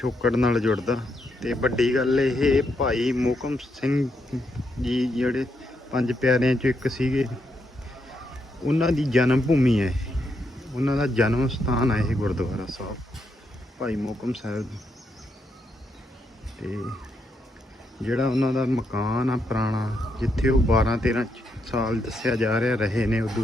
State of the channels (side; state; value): both; normal; correlation 0.79